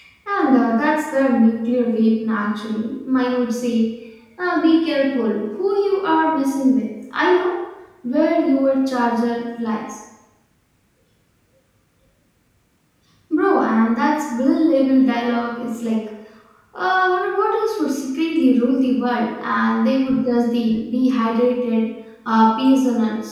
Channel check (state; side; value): identical; both; correlation 1.00